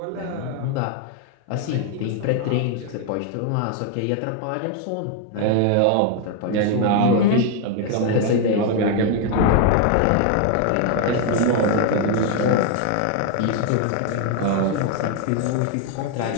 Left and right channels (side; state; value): both; different; correlation 0.01